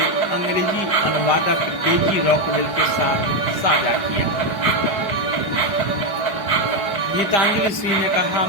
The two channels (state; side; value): late; right; 5.0 ms